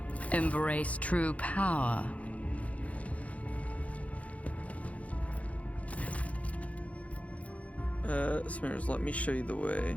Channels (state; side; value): late; right; 0.066 ms